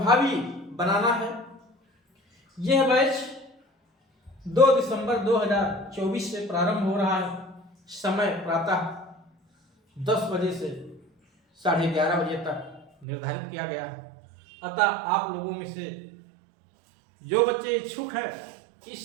बनाना है। यह बैच 2 दिसंबर 2024 से प्रारंभ हो रहा है। समय प्रातः 10 बजे से 11:30 बजे तक निर्धारित किया गया है। अतः आप लोगों में से जो बच्चे इच्छुक हैं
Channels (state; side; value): drops out; left; at 13.1 s